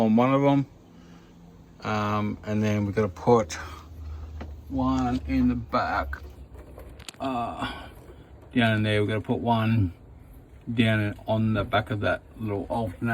one of them. And then we're going to put one in the back down in there. We're going to put one down on the back of that little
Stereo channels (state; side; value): identical; both; correlation 1.00